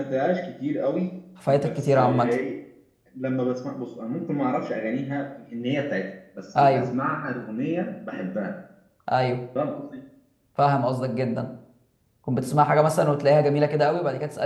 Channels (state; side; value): identical; both; correlation 1.00